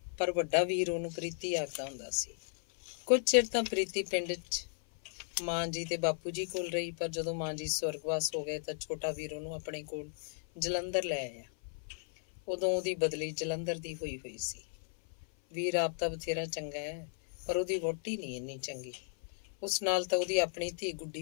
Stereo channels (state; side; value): silent; right; 54 dB below the other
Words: ਸੀ। ਕੁਝ ਚਿਰ ਤਾਂ ਪ੍ਰੀਤੀ ਪਿੰਡ 'ਚ ਮਾਂ ਜੀ ਤੇ ਬਾਪੂ ਜੀ ਕੋਲ ਰਹੀ, ਪਰ ਜਦੋਂ ਮਾਂ ਜੀ ਸਵਰਗਵਾਸ ਹੋ ਗਏ ਤਾਂ ਛੋਟਾ ਵੀਰ ਉਹਨੂੰ ਆਪਣੇ ਕੋਲ ਜਲੰਧਰ ਲੈ ਆਇਆ। ਉਦੋਂ ਉਹਦੀ ਬਦਲੀ ਜਲੰਧਰ ਦੀ ਹੋਈ ਸੀ। ਵੀਰ ਆਪ ਤਾਂ ਬਥੇਰਾ ਚੰਗਾ ਹੈ, ਪਰ ਉਹਦੀ ਵਹੁਟੀ ਨਹੀਂ ਇੰਨੀ ਚੰਗੀ। ਉਸ ਨਾਲ ਤਾਂ ਉਹਦੀ ਆਪਣੀ ਧੀ